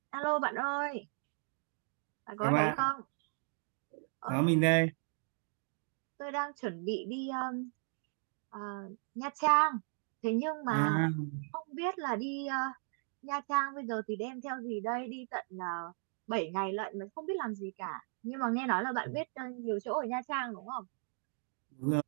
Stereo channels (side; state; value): left; silent; 53 dB below the other